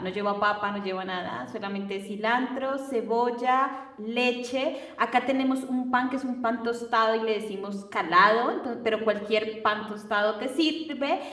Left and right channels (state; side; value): identical; both; correlation 1.00